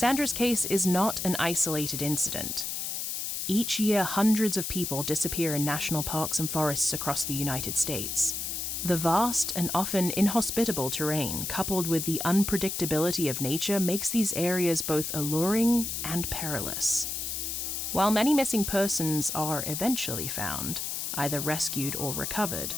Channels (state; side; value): noise; left; hiss, 3 dB below the sound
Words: case is not an isolated incident. Each year, hundreds of people disappear in national parks and forests across the United States. The vast and often inhospitable terrain, coupled with the unpredictability of nature, makes these areas both alluring and perilous. While many missing persons are eventually found, either rescued or recovered,